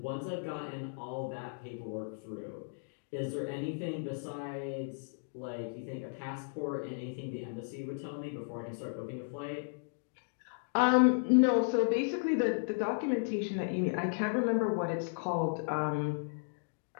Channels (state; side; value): silent; right; digital silence